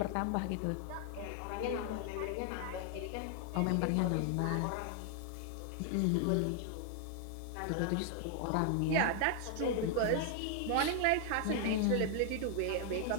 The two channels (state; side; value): different; both; correlation 0.00